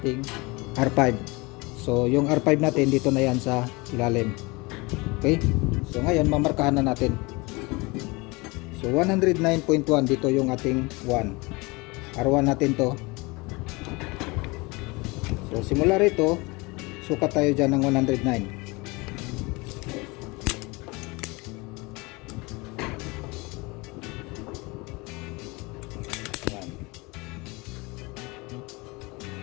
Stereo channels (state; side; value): quieter; right; 25.3 dB